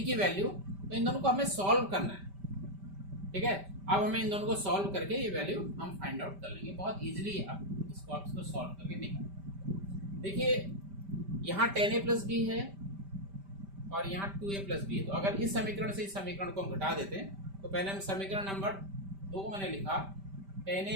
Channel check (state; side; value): late; left; 5.1 ms